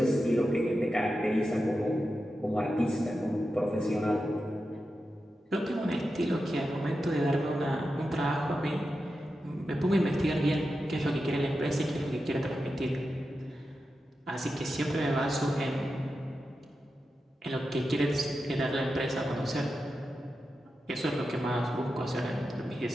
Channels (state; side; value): normal; both; correlation 0.90